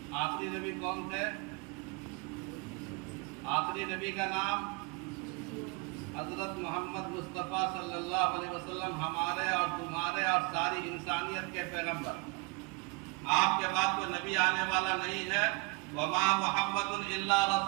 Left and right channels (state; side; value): quieter; left; 28.6 dB